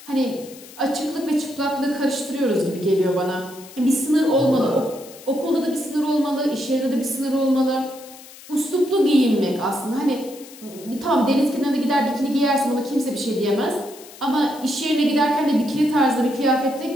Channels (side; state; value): left; noise; hiss, 19 dB below the sound